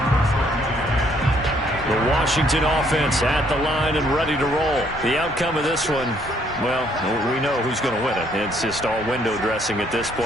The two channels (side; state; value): both; normal; correlation 0.67